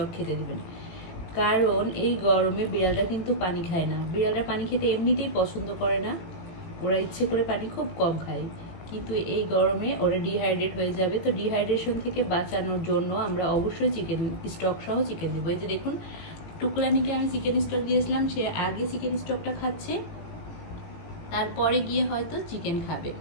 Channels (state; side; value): late; right; 18 ms